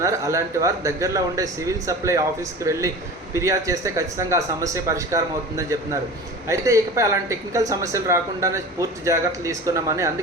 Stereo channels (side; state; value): both; normal; correlation 0.35